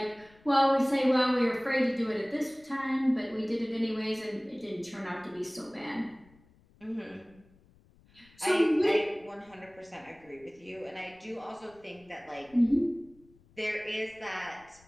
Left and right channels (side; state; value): left; noise; rumble, 29 dB below the sound